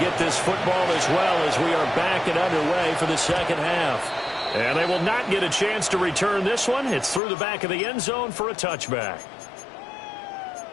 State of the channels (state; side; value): drops out; right; at 7.2 s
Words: this football as well as we are back and underway for the second half. And they will not get a chance to return this one. It's through the back of the end zone for a touchback.